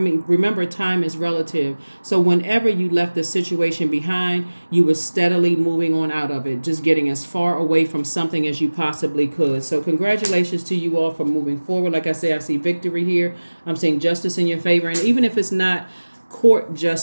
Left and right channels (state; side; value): inverted; both; correlation -1.00